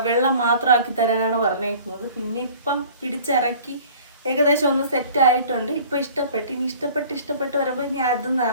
വെള്ളം മാത്രമാക്കി തരാനാണ് പറഞ്ഞേക്കുന്നത്. പിന്നെ ഇപ്പം പിടിച്ചിറക്കി ഏകദേശം ഒന്ന് സെറ്റ് ആയിട്ടുണ്ട്. ഇപ്പം ഇഷ്ടപ്പെട്ട്, ഇനി ഇഷ്ടപ്പെട്ട് വരുമ്പോൾ ഇനി അതൊന്നും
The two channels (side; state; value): both; inverted; correlation -0.48